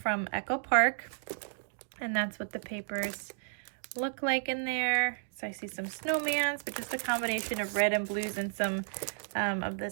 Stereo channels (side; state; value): left; silent; digital silence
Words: Echo Park. And that's what the papers look like in there. So I see some snowmans, but just a combination of red and blues and some of